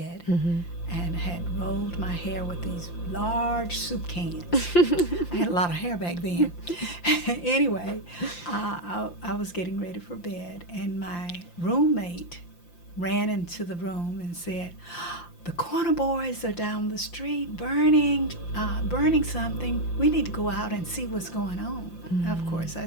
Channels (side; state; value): right; late; 5.8 ms